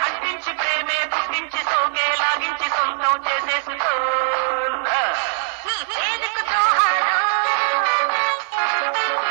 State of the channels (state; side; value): silent; left; digital silence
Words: అంటించి ప్రేమే పుట్టించి సోకే లాగించి సొంతం చేసేసుకో నీ చేదుకు జోహారు